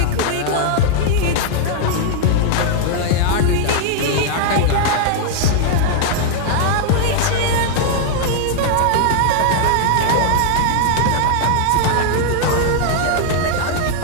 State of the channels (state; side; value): different; both; correlation 0.00